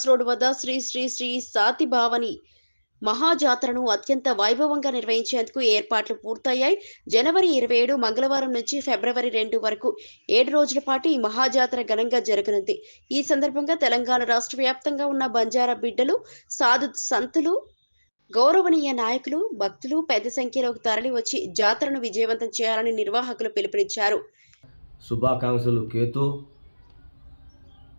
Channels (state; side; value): inverted; both; correlation -1.00